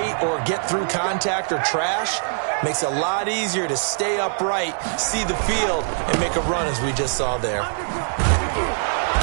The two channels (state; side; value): silent; left; 64 dB below the other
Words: or get through contact or trash, makes it a lot easier to stay upright, see the field, and make a run as we just saw there.